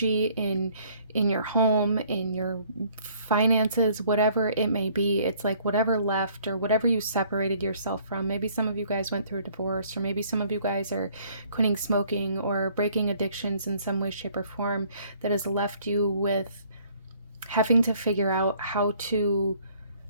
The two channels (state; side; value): inverted; both; correlation -0.60